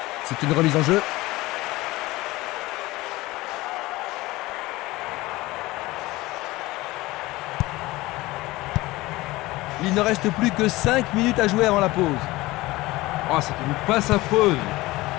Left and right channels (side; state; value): right; quieter; 19.6 dB